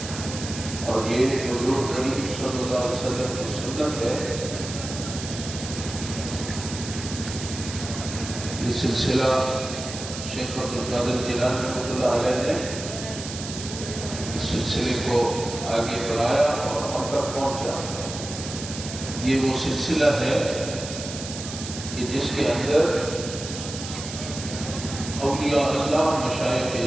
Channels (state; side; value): noise; right; hiss, 9 dB below the sound